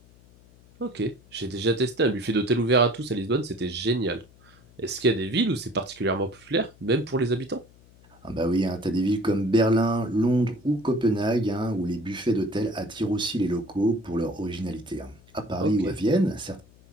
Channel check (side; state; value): left; noise; hum, 26 dB below the sound